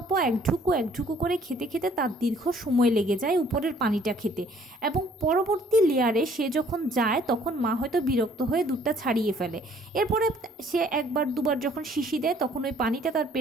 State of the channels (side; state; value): both; normal; correlation 0.59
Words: একঢুকু করে খেতে খেতে তার দীর্ঘ সময় লেগে যায় উপরের পানিটা খেতে, এবং পরবর্তী লেয়ারে সে যখন যায় তখন মা হয়তো বিরক্ত হয়ে দুধটা ছাড়িয়ে ফেলে। এরপরে সে একবার দুবার যখন শিশি দেয় তখন ওই পানিটা তার